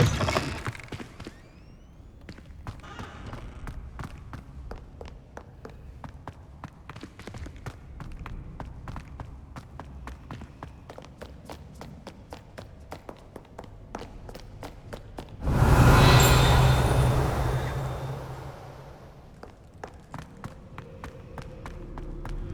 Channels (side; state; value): both; identical; correlation 1.00